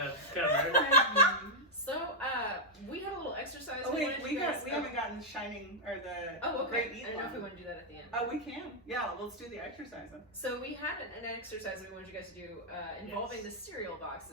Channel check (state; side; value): normal; both; correlation -0.03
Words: cover. So, we had a little exercise. Oh wait, wanted we you guys- haven't gotten the Shining or the Oh, Great okay. Eat I don't know if we one. want to do that at the end. Oh, we can. Yeah, let's do the exercise then. So we had an exercise that we wanted you guys to do involving Yes. the cereal